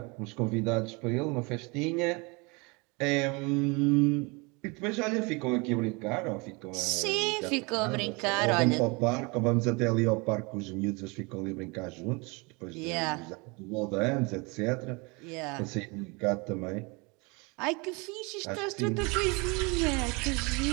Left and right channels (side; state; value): left; quieter; 28.4 dB